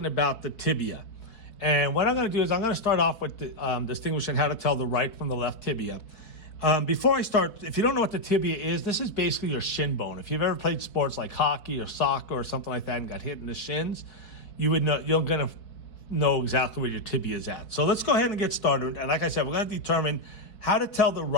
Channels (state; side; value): late; right; 4.7 ms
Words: about the tibia. And what I'm going to do is I'm going to start off with distinguishing how to tell the right from the left tibia. Before I start, if you don't know what the tibia is, this is basically your shin bone. If you've ever played sports like hockey or soccer or something like that and got hit in the shins, you're going to know exactly where your tibia is at. So let's go ahead and get started. And like I said, we're going to determine how to tell the